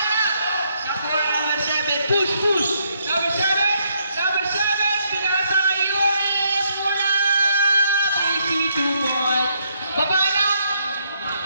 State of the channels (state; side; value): inverted; both; correlation -0.74